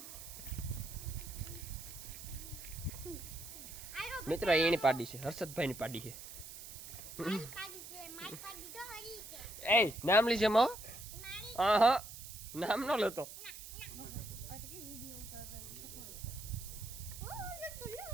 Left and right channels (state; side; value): noise; right; hiss, 12 dB below the sound